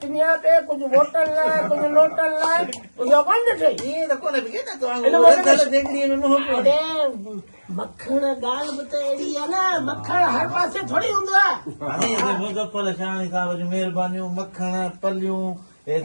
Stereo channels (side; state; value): both; inverted; correlation -1.00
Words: पिनिया पे कुझु वोटनि लाइ कुझु नोटनि लाइ इहो कोन ॾिठई मखण ॻाल्हि बि त अहिड़ी आहे न मखण हर पासे थोरी हूंदो आहे मुज़फ़्फ़र शानी साहिब जी महिरबानियूं मखण पलियूं